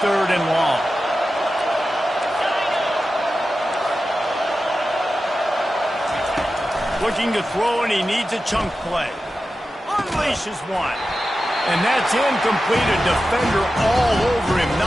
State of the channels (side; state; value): both; normal; correlation 0.93